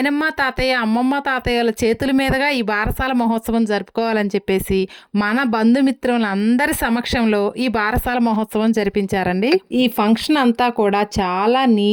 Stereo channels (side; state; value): both; identical; correlation 1.00